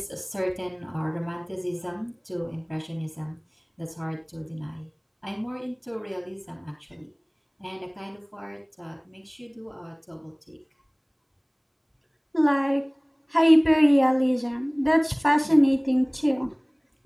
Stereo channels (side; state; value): both; identical; correlation 1.00